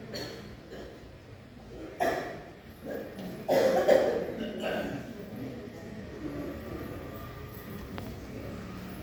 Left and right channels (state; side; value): identical; both; correlation 1.00